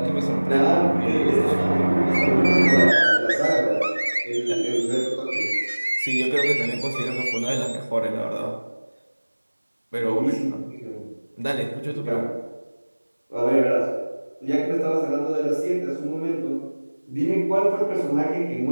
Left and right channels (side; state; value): both; inverted; correlation -1.00